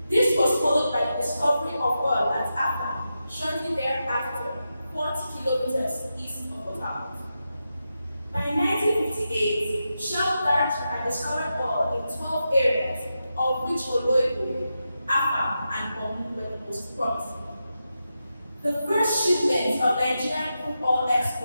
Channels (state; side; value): inverted; both; correlation -0.89